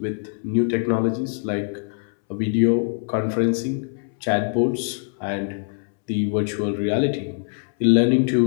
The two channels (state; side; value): silent; right; 63 dB below the other